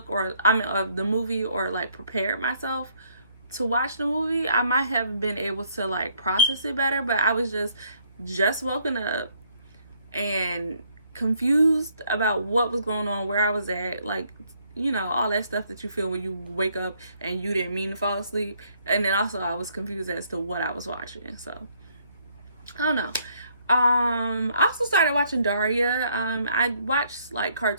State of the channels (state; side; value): inverted; both; correlation -0.68